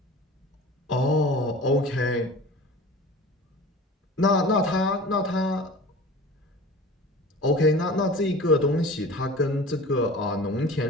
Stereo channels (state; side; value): normal; both; correlation 0.39